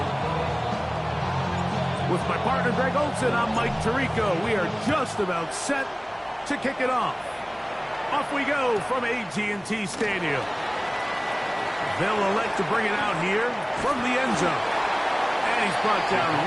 With my partner, Greg Olson, I'm Mike Tirico. We are just about set to kick it off. Off we go from AT&T Stadium. They'll elect to bring it out here from the end zone. And he's brought down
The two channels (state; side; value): identical; both; correlation 1.00